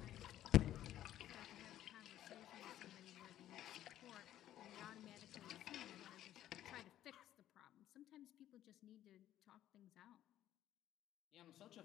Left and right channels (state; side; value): quieter; right; 12.5 dB